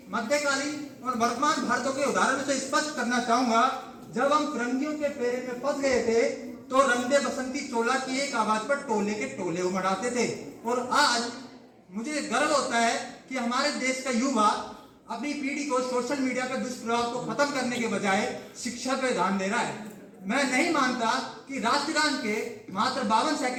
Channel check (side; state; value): both; identical; correlation 1.00